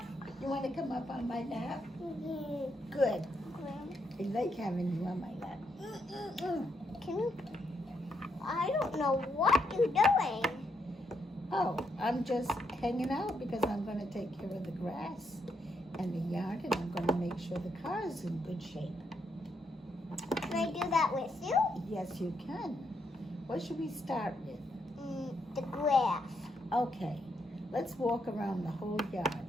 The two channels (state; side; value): normal; both; correlation 0.78